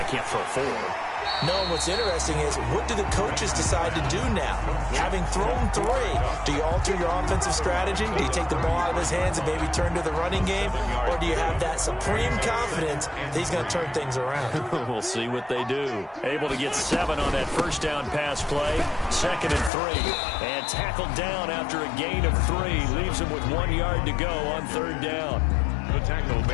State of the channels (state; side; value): drops out; right; at 19.7 s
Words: can't throw 4. No, and what's interesting is, what do the coaches decide to do now? Having thrown 3, do you alter your offensive strategy? Do you take the ball out of his hands and maybe turn to the running game? Or do you have that supreme confidence that he's going to turn things around? We'll see what they do. Able to get 7 on that first down pass play. 2nd and 3. And tackled down after a gain of 3. Leaves him with 1 yard to go on 3rd down. The tackle